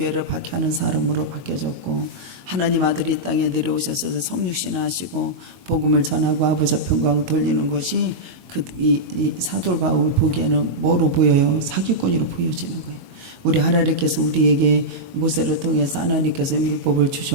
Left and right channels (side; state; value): left; late; 22 ms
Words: 박해하는 사람으로 바뀌어졌고, 하나님 아들이 이 땅에 내려오셔서 성육신하시고 복음을 전하고 아버지 앞에 영광을 돌리는 것이 이 사도 바울 보기에는 뭐로 보여요? 사기꾼으로 보여지는 거예요. 우리 하나님께서 우리에게 모세를 통해서 하나님께서 율법을